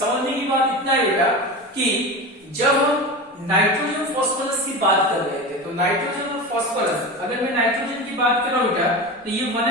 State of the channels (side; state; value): both; normal; correlation 0.26